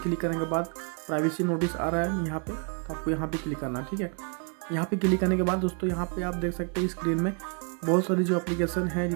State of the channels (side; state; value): left; quieter; 38.6 dB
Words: करने के बाद प्राइवेसी नोटिस आ रहा है यहाँ पे, तो आपको यहाँ पे क्लिक करना है। ठीक है, यहाँ पे क्लिक करने के बाद दोस्तों यहाँ पे आप देख सकते हैं स्क्रीन में बहुत सारी जो एप्लीकेशन है,